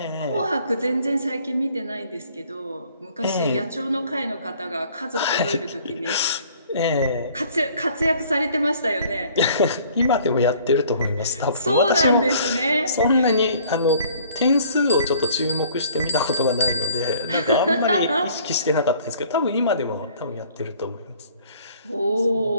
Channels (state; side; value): inverted; both; correlation -0.56